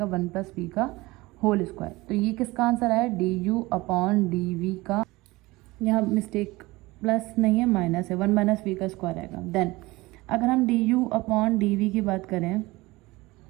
1 + v का होल स्क्वायर। तो ये किसका आंसर है, du/dv का, यहाँ मिस्टेक प्लस नहीं है माइनस है, 1 - v का स्क्वायर आएगा। देन अगर हम du/dv की बात करें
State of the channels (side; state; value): left; quieter; 21.0 dB